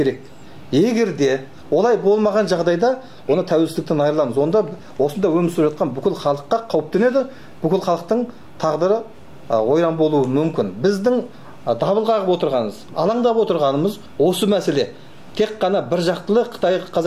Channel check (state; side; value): identical; both; correlation 1.00